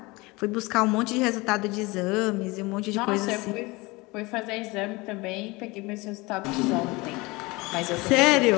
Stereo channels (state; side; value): quieter; right; 23.6 dB